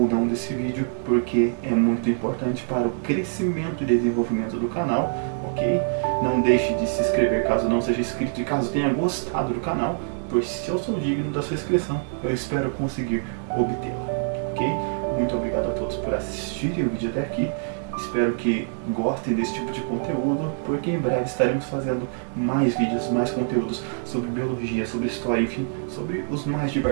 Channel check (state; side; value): silent; left; digital silence